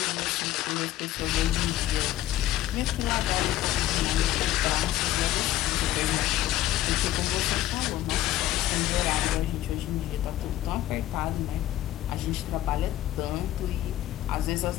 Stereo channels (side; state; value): right; quieter; 13.8 dB